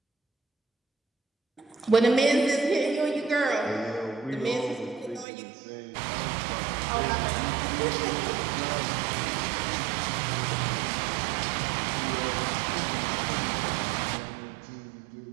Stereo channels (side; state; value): left; drops out; at 5.2 s